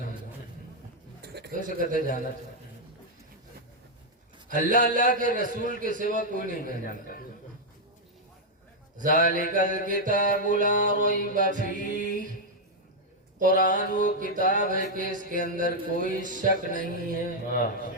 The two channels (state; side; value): normal; both; correlation -0.02